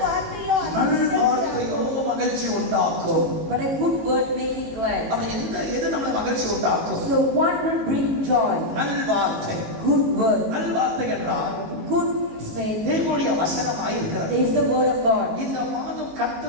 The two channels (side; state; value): left; late; 19 ms